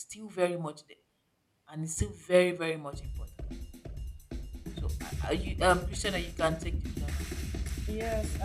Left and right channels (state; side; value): identical; both; correlation 1.00